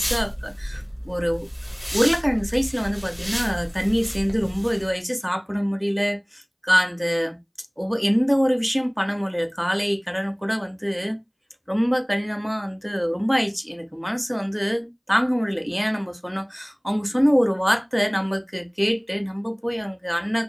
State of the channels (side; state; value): both; identical; correlation 1.00